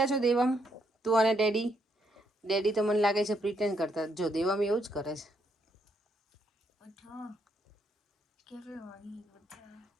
છો. દેવમ, તું અને ડેડી તો મને લાગે છે પ્રિટેન્ડ કરતા. જો દેવમ એવું જ કરે છે.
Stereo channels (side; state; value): both; normal; correlation 0.75